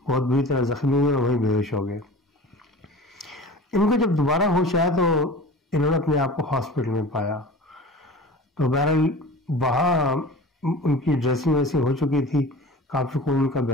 बहुत बुरी तरह जख्मी हुए और वहीं बेहोश हो गए। इनको जब दोबारा होश आया तो इन्होंने अपने आप को हॉस्पिटल में पाया। तो बहरहाल वहाँ उनकी ड्रेसिंग वैसी हो चुकी थी, काफी खून उनका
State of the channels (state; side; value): normal; both; correlation 0.38